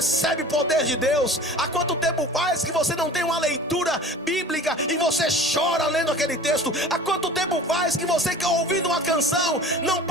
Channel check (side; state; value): both; normal; correlation 0.41